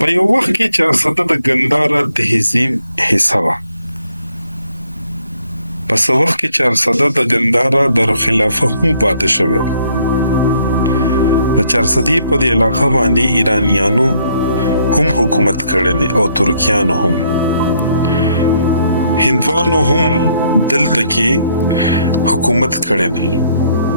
یو وخت کې چارسده د ګندهارا تهذیب حصه وه. په څه وخت کې چارسده د ګندهارا دارالخلافه هم پاتې شوې ده. د چارسدې په دې علاقه باندې ایرانیانو هم حکومت کړی دی او ترکیانو هم. هندوانو هم دلته کې حکومت کړی دی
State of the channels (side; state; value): both; inverted; correlation -0.69